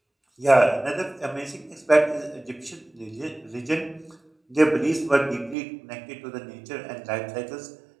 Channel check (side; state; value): left; drops out; at 5.6 s